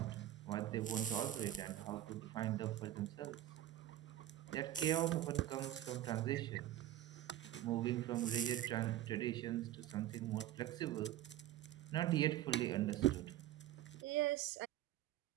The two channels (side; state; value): left; quieter; 13.0 dB